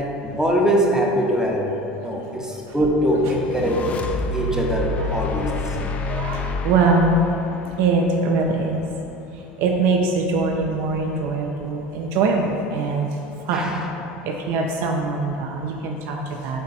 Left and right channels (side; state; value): both; normal; correlation 0.36